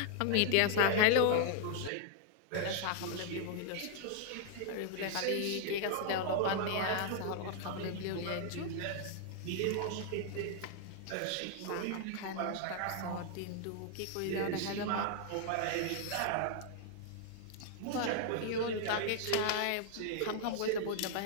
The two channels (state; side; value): different; both; correlation 0.00